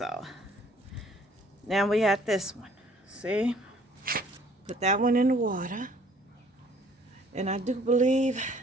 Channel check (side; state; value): both; normal; correlation 0.58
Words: now we have this one. See? Put that one in the water. And I do believe